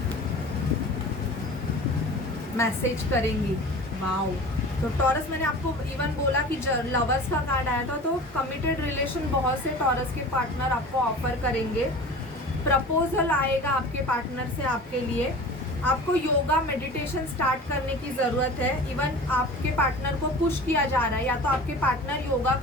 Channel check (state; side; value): normal; both; correlation 0.38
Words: मैसेज करेंगी, वाओ। तो टॉरस, मैंने आपको इवन बोला कि लवर्स का कार्ड आया था, तो कमिटेड रिलेशन बहुत से टॉरस के पार्टनर आपको ऑफर करेंगे। प्रपोजल आएगा आपके पार्टनर से आपके लिए। आपको योगा मेडिटेशन स्टार्ट करने की ज़रूरत है। इवन आपके पार्टनर को पुश किया जा रहा है, या तो आपके पार्टनर योगा